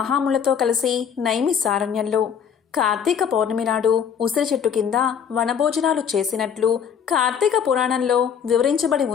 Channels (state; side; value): quieter; right; 7.7 dB